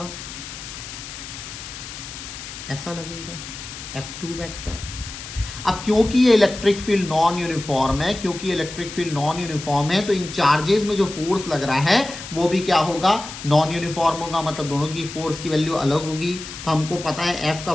ऐसा लगेगा, F2 वेक्टर। अब क्योंकि ये इलेक्ट्रिक फील्ड नॉन यूनिफॉर्म है तो इन चार्जेस में जो फोर्स लग रहा है वो भी क्या होगा, नॉन यूनिफॉर्म होगा। मतलब दोनों की फोर्स की वैल्यू अलग होगी। तो हमको पता है F का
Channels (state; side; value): noise; left; hiss, 11 dB below the sound